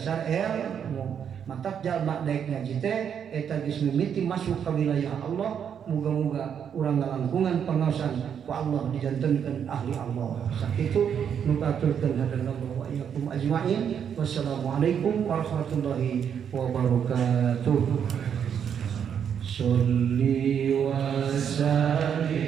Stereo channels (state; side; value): quieter; left; 8.1 dB